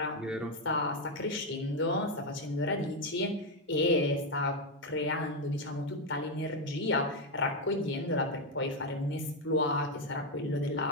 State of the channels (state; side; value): normal; both; correlation 0.05